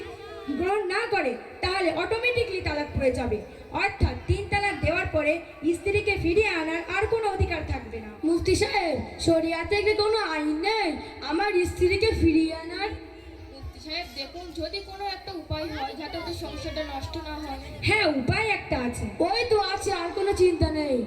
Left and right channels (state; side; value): identical; both; correlation 1.00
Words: গ্রহণ না করে তাহলে অটোমেটিকলি তালাক পড়ে যাবে, অর্থাৎ 3 তালাক দেওয়ার পরে স্ত্রীকে ফিরিয়ে আনার আর কোনো অধিকার থাকবে না। মুফতি সাহেব, শরিয়াতে কি কোনো আইন নেই আমার স্ত্রীকে ফিরিয়ে আনার? মুফতি সাহেব দেখুন, যদি কোনো একটা উপায় হয় যাতে ওদের সংসারটা নষ্ট না হয়। হ্যাঁ, উপায় একটা আছে। ওই তো আছে, আর কোনো চিন্তা নেই।